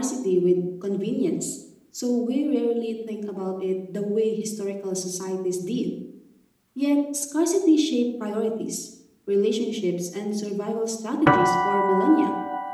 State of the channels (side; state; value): both; identical; correlation 1.00